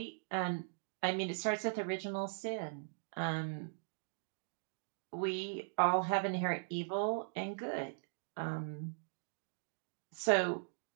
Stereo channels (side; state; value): left; silent; digital silence